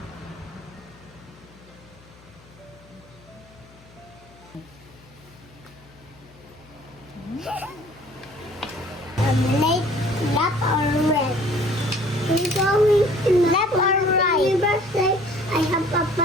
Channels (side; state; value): left; noise; hum, 25 dB below the sound